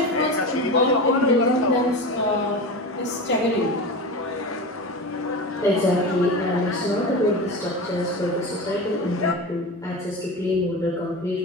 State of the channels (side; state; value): both; normal; correlation 0.27